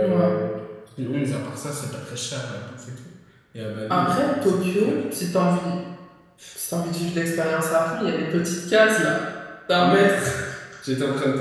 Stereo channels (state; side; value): identical; both; correlation 1.00